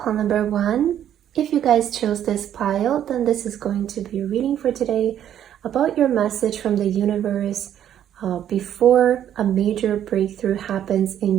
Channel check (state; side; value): quieter; left; 10.4 dB